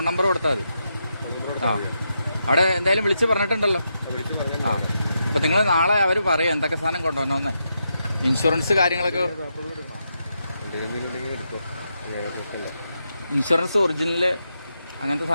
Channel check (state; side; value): inverted; both; correlation -0.84